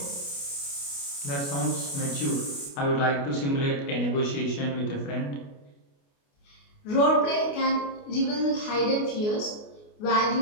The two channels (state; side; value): late; right; 28 ms